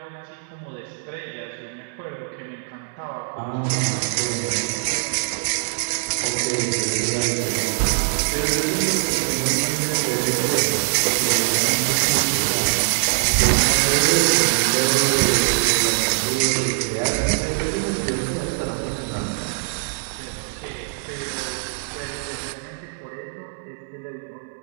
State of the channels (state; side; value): silent; left; digital silence